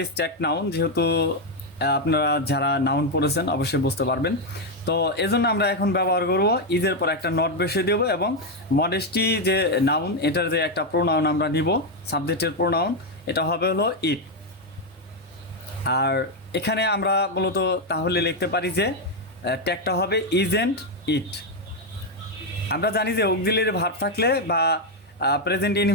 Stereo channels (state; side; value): normal; both; correlation 0.03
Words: নাউন। যেহেতু আপনারা যারা নাউন পড়েছেন অবশ্যই বুঝতে পারবেন। তো এজন্য আমরা এখন ব্যবহার করব ইজের পর একটা নট বসিয়ে দেবো, এবং মডেস্টি যে নাউন, এটার যে একটা প্রোনাউন আমরা নিব, সাবজেক্টের প্রোনাউন, এটা হবে হলো ইট। আর এখানে আমরা মূলত তাহলে লিখতে পারি যে ট্যাগটা হবে ইজেন্ট ইট। আমরা জানি যে অক্সিলিয়ারি ভার্ব থাকলে বা প্রেজেন্ট